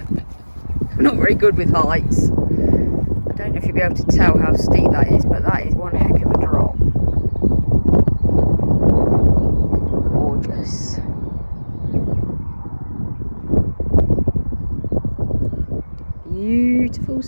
I'm not very good with heights. I don't know if you'll be able to tell how steep that is, but that is one heck of a drop. Gorgeous. Beautiful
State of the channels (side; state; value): both; inverted; correlation -1.00